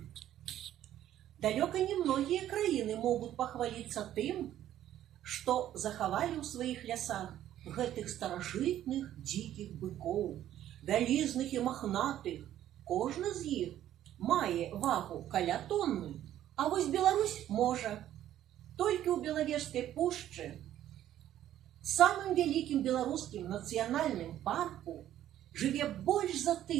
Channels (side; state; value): left; quieter; 12.1 dB